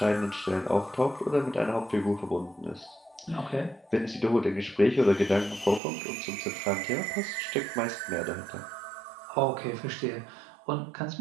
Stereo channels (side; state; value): left; drops out; at 5.8 s